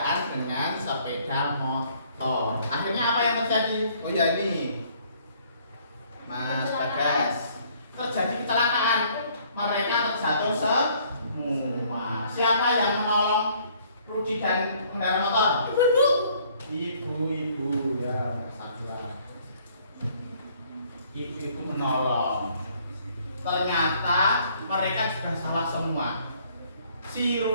dengan sepeda motor. Akhirnya apa yang terjadi? Oh ya, ini Mas Bagas, terjadi kecelakaan. Mereka terjatuh semua. Siapa yang menolong Rudi dan pengendara motor? Ibu-ibu ya, Mas Abdullah. Ibu-ibu menolong. Ternyata mereka juga salah semua. Si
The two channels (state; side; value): inverted; both; correlation -0.62